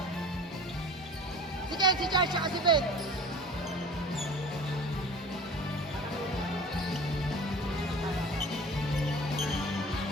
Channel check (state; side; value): normal; both; correlation 0.41